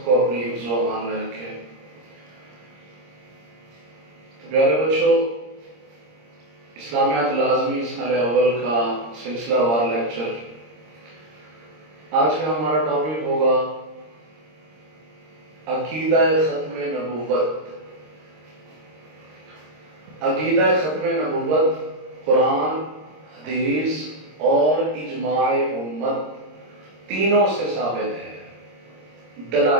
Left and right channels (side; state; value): left; late; 26 ms